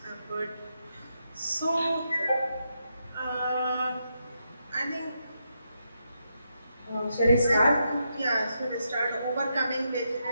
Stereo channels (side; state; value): both; inverted; correlation -0.82